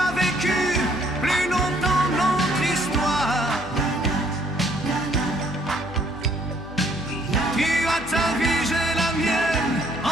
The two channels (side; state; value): left; noise; hum, 15 dB below the sound